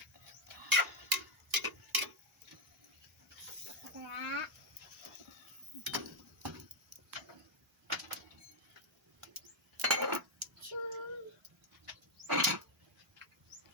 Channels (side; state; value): both; normal; correlation 0.02